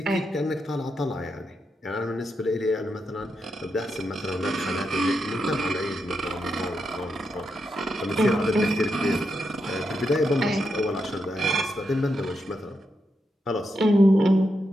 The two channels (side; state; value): both; normal; correlation 0.84